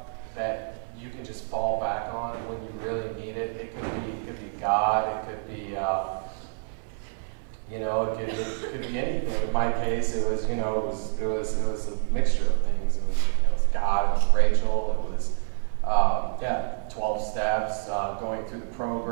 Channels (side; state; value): left; silent; 60 dB below the other